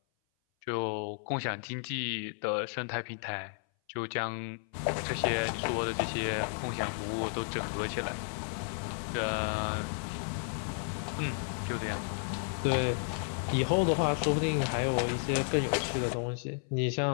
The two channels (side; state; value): right; silent; 56 dB below the other